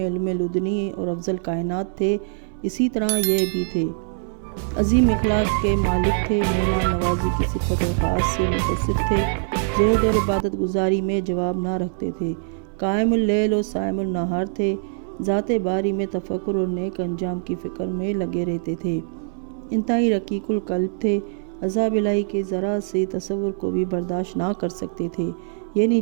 لدنی اور افضل کائنات تھے، اسی طرح یہ بھی تھے۔ عظیم اخلاق کے مالک تھے، مہمان نوازی کی صفت خاص سے متصف تھے، زہد اور عبادت گزاری میں جواب نہ رکھتے تھے، قائم اللیل اور صائم النہار تھے، ذات باری میں تفکر اور نیک انجام کی فکر میں لگے رہتے تھے، انتہائی رقیق القلب تھے، عذاب الہی کے ذرا سے تصور کو بھی برداشت نہ کر سکتے تھے، یعنی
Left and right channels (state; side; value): silent; left; digital silence